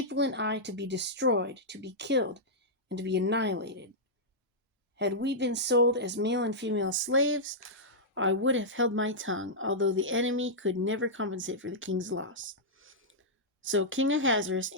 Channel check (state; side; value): normal; both; correlation -0.10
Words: and I, to be destroyed, to be killed, and to be annihilated. Had we been sold as male and female slaves, I would have held my tongue, although the enemy could never compensate for the king's loss." So King Ahasuerus